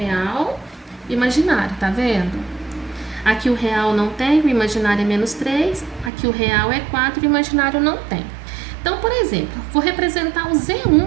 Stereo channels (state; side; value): drops out; left; at 6.1 s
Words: imaginário, tá vendo? Aqui o real não tem, o imaginário é menos 3. Aqui o real é 4, o imaginário não tem. Então, por exemplo, vou representar o